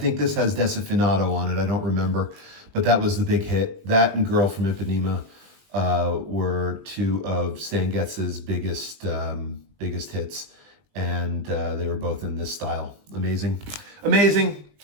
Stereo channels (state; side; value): late; left; 20 ms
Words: this has Desafinado on it. I don't remember, but that was the big hit. That and Girl from Ipanema were two of Stan Getz's biggest hits, and they were both in this style. Amazing.